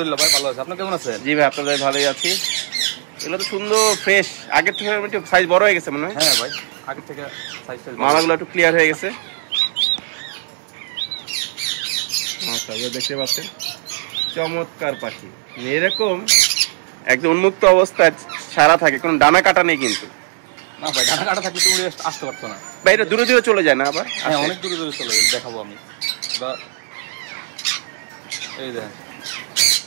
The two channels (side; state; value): left; silent; 63 dB below the other